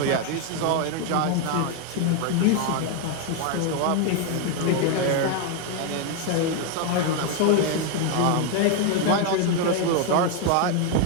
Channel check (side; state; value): both; different; correlation 0.01